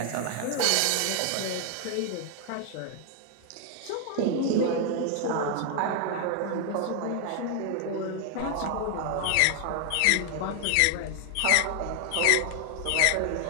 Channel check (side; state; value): both; different; correlation 0.00